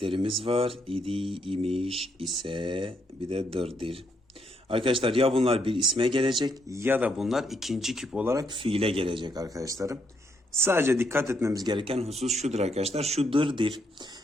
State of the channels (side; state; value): both; normal; correlation 0.75